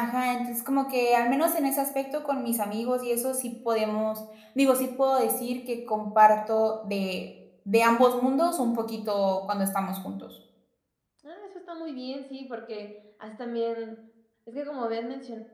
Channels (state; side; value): identical; both; correlation 1.00